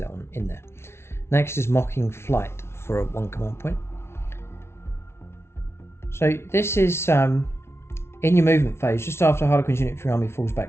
one in there. Next is Mocking Flight for a 1 command point. So this is in your movement phase, just after Harlequin's unit from your army falls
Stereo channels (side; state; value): right; late; 0.12 ms